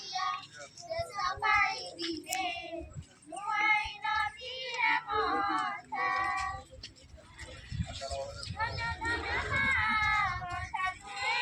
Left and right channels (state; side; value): identical; both; correlation 1.00